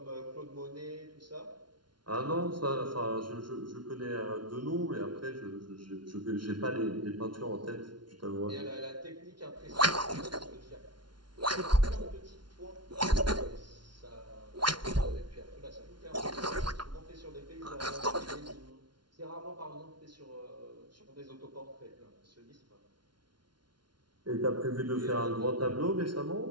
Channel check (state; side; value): late; left; 0.71 ms